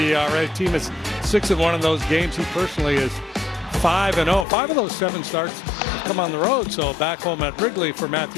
Team is 6-1 in those games. He personally is 5-0. 5 of those 7 starts have come on the road. So back home at Wrigley for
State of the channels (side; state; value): right; drops out; at 4.5 s